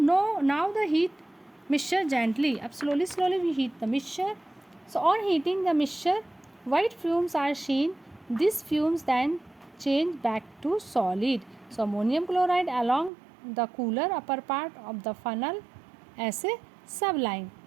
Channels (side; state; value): left; drops out; at 13.1 s